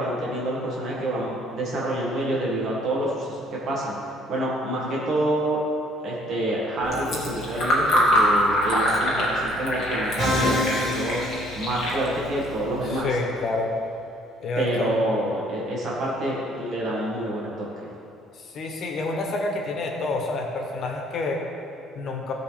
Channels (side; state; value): both; normal; correlation 0.61